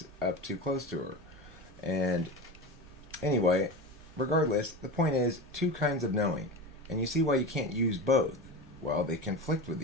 up too close to her. And anyway, regardless, the point is 2 kinds of knowing. And you see why you can't use both. Well, they conflict with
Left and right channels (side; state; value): both; normal; correlation 0.26